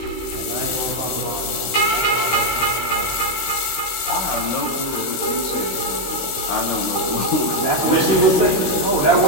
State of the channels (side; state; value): right; late; 16 ms